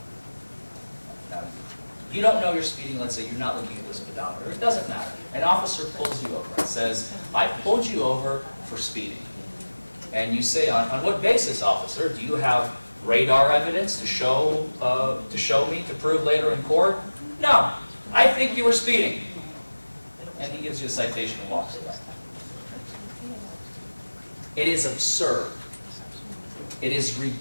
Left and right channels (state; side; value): inverted; both; correlation -1.00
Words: Now, you don't know you're speeding. Let's say you're not looking at the speedometer. It doesn't matter. An officer pulls you over and says, "I pulled you over for speeding." And you say, on what basis, officer? Do you have radar evidence to show me, to prove later in court? No, I think you were speeding. And he gives you a citation and walks away. It is absurd. It is